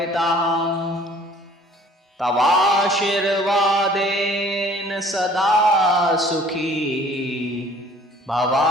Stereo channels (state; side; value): normal; both; correlation 0.53